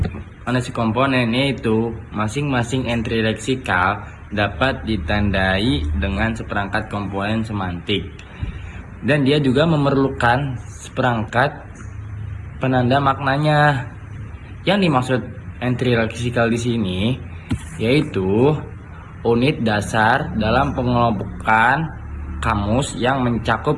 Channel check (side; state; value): both; identical; correlation 1.00